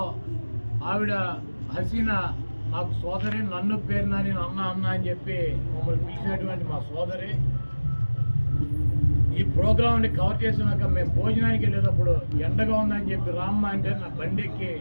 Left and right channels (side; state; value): both; inverted; correlation -1.00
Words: ఆవిడ హసీనా నాకు సోదరి, నన్ను పేరు నాని అన్న అని చెప్పి మమ్మల్ని పిలిచినటువంటి మా సోదరి ఈ ప్రోగ్రాంని కవర్ చేసినాక మేము భోజనానికి వెళ్ళేటప్పుడు ఎండగా ఉందని చెప్పి రామ్మ అంటే నా బండి ఎక్కి